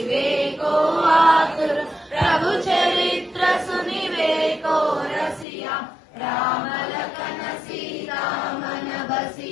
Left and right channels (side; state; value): right; drops out; at 5.5 s